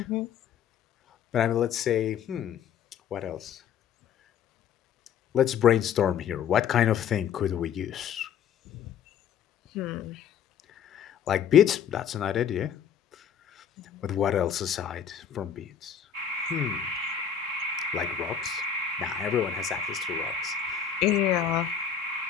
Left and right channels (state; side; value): quieter; right; 8.2 dB